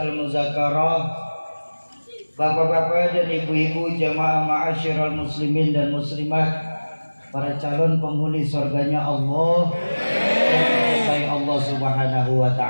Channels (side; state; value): both; inverted; correlation -1.00